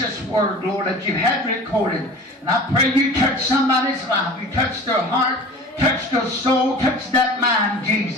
word, Lord, that you had recorded. And I pray you touch somebody's life. You touch their heart, touch their soul, touch that mind,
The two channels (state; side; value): normal; both; correlation 0.40